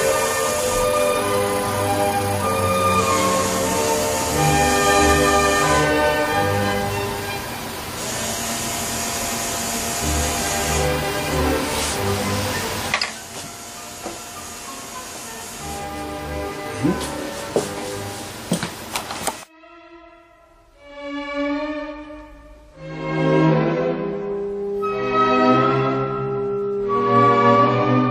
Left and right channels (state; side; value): identical; both; correlation 1.00